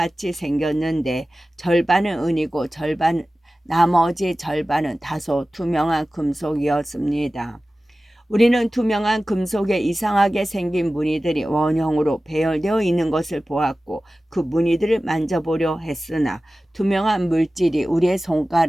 생겼는데 절반은 은이고 나머지 절반은 다소 투명한 금속이었습니다. 우리는 투명한 금속에 이상하게 생긴 무늬들이 원형으로 배열되어 있는 것을 보았고 그 무늬들을 만져보려 했으나 투명한 물질이 우리의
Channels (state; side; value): normal; both; correlation 0.96